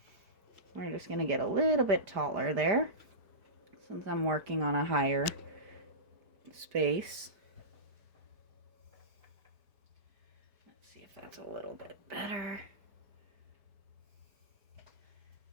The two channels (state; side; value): late; left; 4.6 ms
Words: We're just going to get a little bit taller there since I'm working on a higher space. Let's see if that's a little bit better.